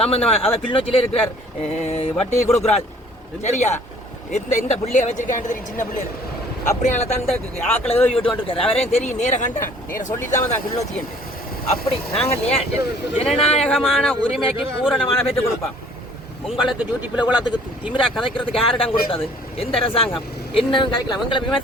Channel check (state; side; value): normal; both; correlation 0.55